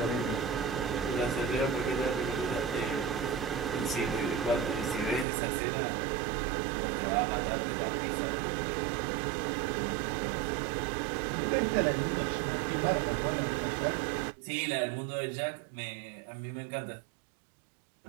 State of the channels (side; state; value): left; drops out; at 5.2 s